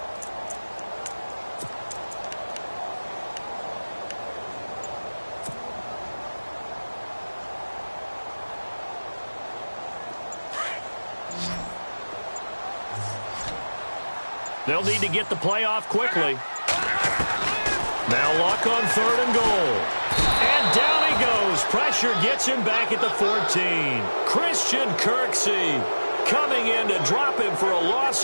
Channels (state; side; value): inverted; both; correlation -1.00